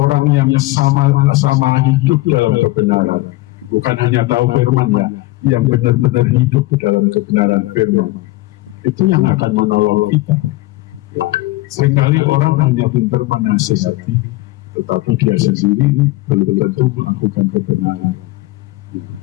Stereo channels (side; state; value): right; quieter; 19.6 dB